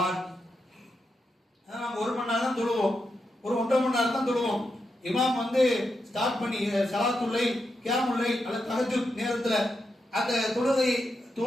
நம்ம 1 மணி நேரம் தான் தொழுவோம், ஒரு 1.5 மணி நேரம் தான் தொழுவோம். இமாம் வந்து ஸ்டார்ட் பண்ணி ஸலாத்துல்லை, கியாமுல்லை அல்லது தஹஜ்ஜுத் நேரத்துல அந்த தொழுகை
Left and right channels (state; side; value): normal; both; correlation 0.85